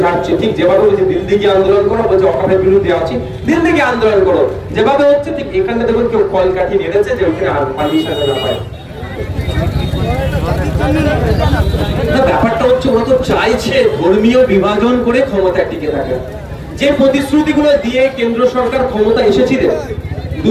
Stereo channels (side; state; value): both; identical; correlation 1.00